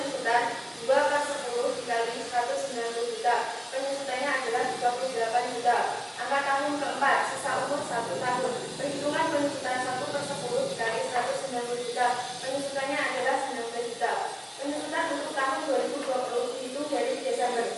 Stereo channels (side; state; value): both; identical; correlation 1.00